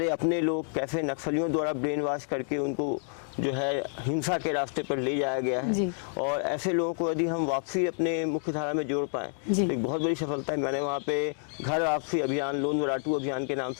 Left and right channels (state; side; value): silent; right; 59 dB below the other